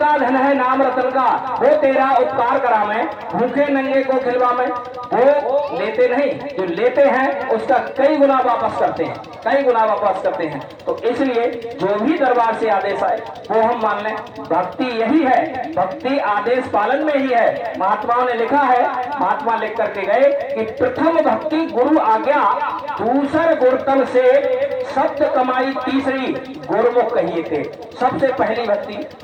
धन है नाम रतन का। वो तेरा उपकार करा मैं, भूखे नंगे को खिलवा मैं। वो लेते नहीं, जो लेते हैं उसका कई गुना वापस करते हैं, कई गुना वापस करते हैं। तो इसलिए जो भी दरबार से आदेश आए वो हम मान लें। भक्ति यही है, भक्ति आदेश पालन में ही है। महात्माओं ने लिखा है, महात्मा लिख करके गए कि प्रथम भक्ति गुरु आज्ञा, दूसर गुरुतल से शब्द कमाई, तीसरी गुरुमुख कहिए थे। सबसे पहली भक्ति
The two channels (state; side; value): identical; both; correlation 1.00